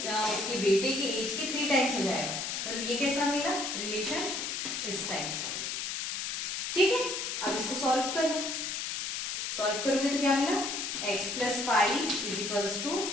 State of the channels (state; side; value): noise; left; hiss, 3 dB below the sound